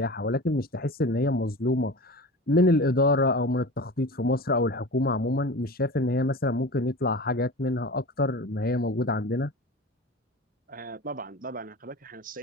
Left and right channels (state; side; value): normal; both; correlation 0.33